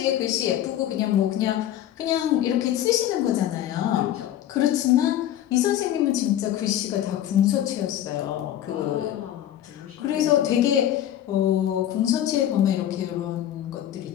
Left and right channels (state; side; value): quieter; right; 11.7 dB